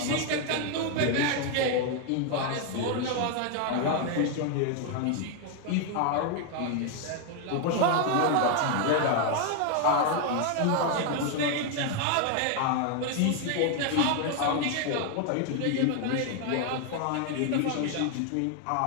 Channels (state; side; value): different; both; correlation 0.01